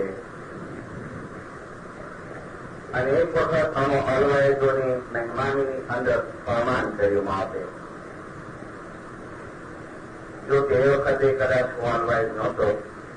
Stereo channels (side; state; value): both; identical; correlation 1.00